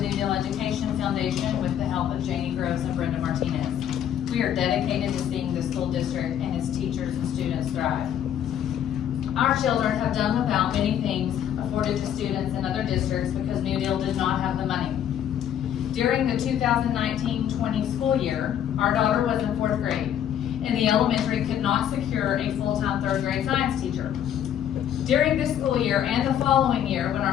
Deal Education Foundation with the help of Janie Gross and Brenda Martinez. We are dedicated to seeing the school district and its teachers and students thrive. Our children have done without many things afforded to students in other districts because New Deal did not have the money. During the 2019-20 school year, our daughter was in 4th grade, and the elementary could not secure a full-time 3rd grade science teacher. During this school year and the following year, when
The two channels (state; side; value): quieter; right; 10.0 dB